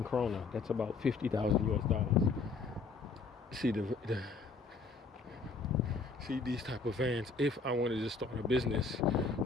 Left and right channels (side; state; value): right; quieter; 4.3 dB